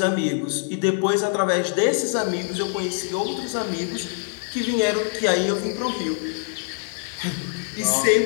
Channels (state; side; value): silent; right; 63 dB below the other